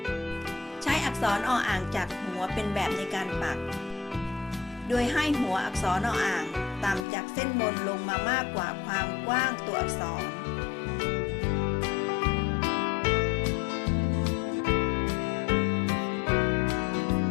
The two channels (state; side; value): drops out; right; at 7.1 s